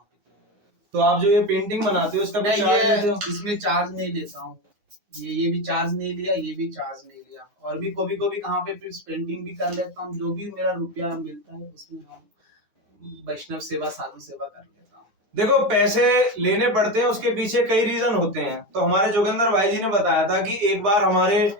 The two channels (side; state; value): left; late; 9.6 ms